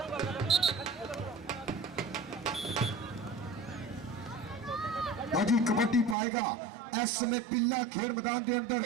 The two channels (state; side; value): drops out; left; at 6.2 s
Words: अजी कबड्डी पाएगा इस समय पिल्ला खेल मैदान के अंदर